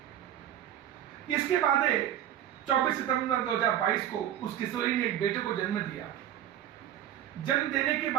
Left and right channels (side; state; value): left; quieter; 11.2 dB